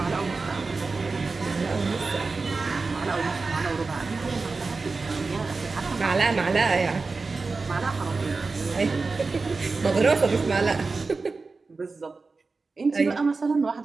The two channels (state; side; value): quieter; left; 4.0 dB